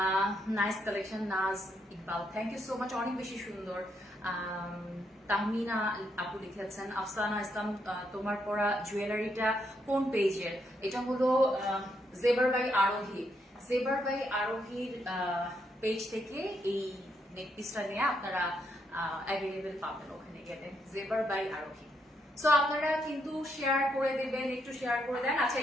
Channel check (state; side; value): normal; both; correlation 0.77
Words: nice collection. Naz Iqbal, thank you so much, অনেক বেশি সুন্দর। তাহমিনা আপু লিখেছেন, আফসানা ইসলাম, তোমার পরা জুয়েলারিটা কোন পেজের? এটা হলো জেবার বাই আরোহীর পেজ থেকে এই নেকপিসটা নিয়ে আপনারা অ্যাভেলেবেল পাবেন ওখানে গেলে, জেবার বাই আরোহী। সো আপনারা কিন্তু শেয়ার করে দেবেন, একটু শেয়ার করে দেন। আচ্ছা,